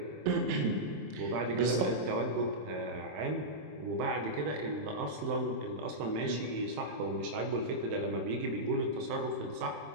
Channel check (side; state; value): left; late; 27 ms